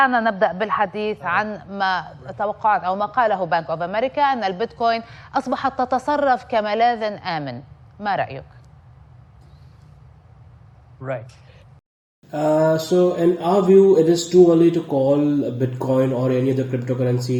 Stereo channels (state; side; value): identical; both; correlation 1.00